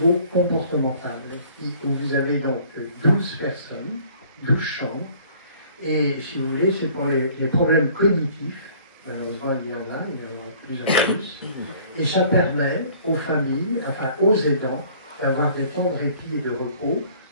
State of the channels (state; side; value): inverted; both; correlation -0.54